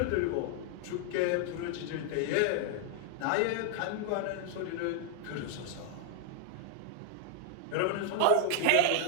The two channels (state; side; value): different; both; correlation 0.00